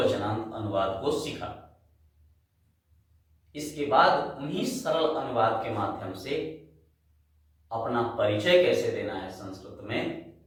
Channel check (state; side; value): identical; both; correlation 1.00